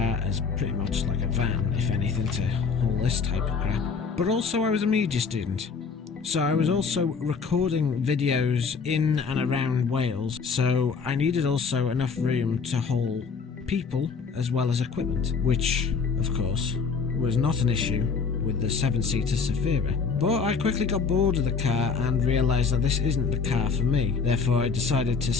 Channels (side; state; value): right; quieter; 5.5 dB